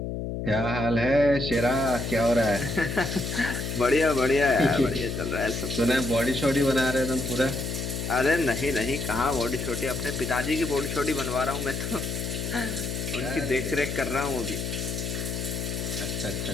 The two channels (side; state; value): left; noise; hum, 4 dB below the sound